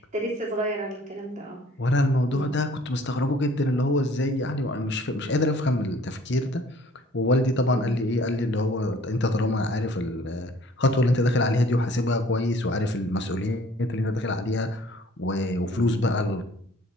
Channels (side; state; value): both; normal; correlation 0.54